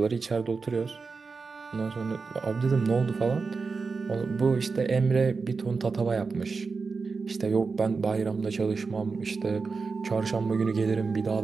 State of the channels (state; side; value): quieter; left; 4.6 dB